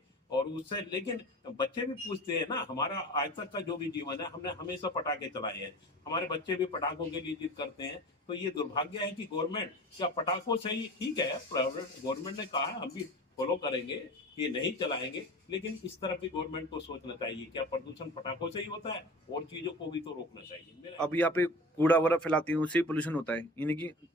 और उससे, लेकिन बच्चे भी पूछते हैं ना। हमारा आज तक का जो भी जीवन है, हमने हमेशा पटाखे चलाए हैं, हमारे बच्चे भी पटाखों के लिए जिद करते हैं। तो ये दुर्भाग्य है कि गवर्नमेंट क्या पटाखों से ही, ठीक है गवर्नमेंट ने कहा है, हम भी फॉलो करेंगे कि नहीं चलाएंगे, लेकिन इस तरफ भी गवर्नमेंट को सोचना चाहिए, क्या प्रदूषण पटाखों से ही होता है? और चीजों को भी तो रोकना चाहिए। अब यहाँ पे कूड़ा वगैरह फैलाती है, उससे पोल्यूशन होता है, यानी कि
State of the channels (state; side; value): normal; both; correlation 0.36